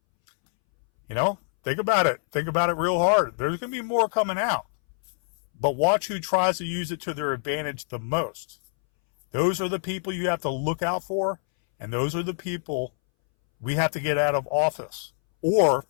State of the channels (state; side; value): silent; right; 62 dB below the other